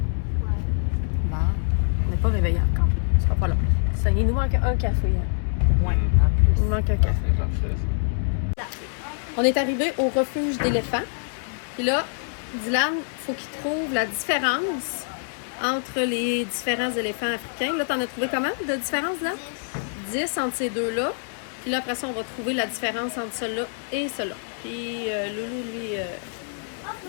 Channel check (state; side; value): silent; right; 62 dB below the other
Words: Ouais. Bon, on n'est pas réveillé encore. Ce sera pas long. Ça, il nous manque un café. Hein. Ouais, Mm. en Il plus. nous manque un café. On est arrivé au refuge d'éléphants. Puis là, Dylan, faut qu'il trouve la différence entre les différents éléphants africains. Là, t'en as trouvé comment de différence, là? 10 entre ces deux-là. Puis là, après ça, on va trouver la différence entre celui-là et celui-là. Puis Loulou, lui,